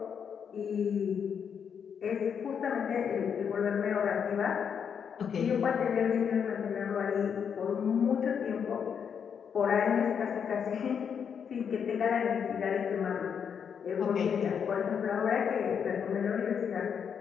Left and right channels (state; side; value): quieter; right; 7.3 dB